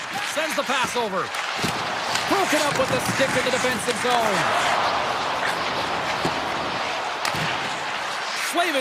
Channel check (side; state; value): both; identical; correlation 1.00